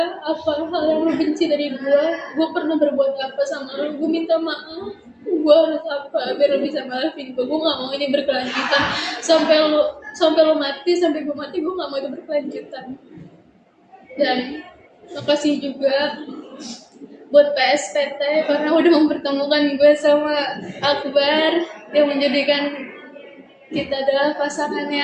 apa hal yang lu benci dari gue pernah berbuat apa sama lu, gue minta maaf. Gue harus apa biar lu bisa maafin gue gak mau ini berkelanjutan sampai lu mati, sampai gue mati, gue gak mau itu berkelanjutan. Dan makasih juga buat PSPT karena udah mempertemukan gue sama Akbar yang menjadikan kita adalah pasangan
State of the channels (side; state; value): both; identical; correlation 1.00